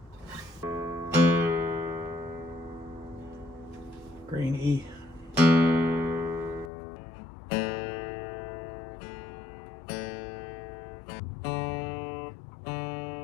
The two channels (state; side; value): drops out; right; at 6.7 s